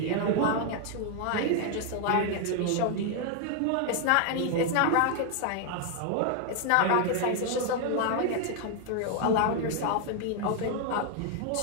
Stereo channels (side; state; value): both; different; correlation 0.00